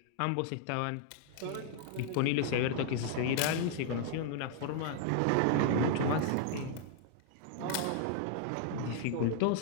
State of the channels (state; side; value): different; both; correlation 0.00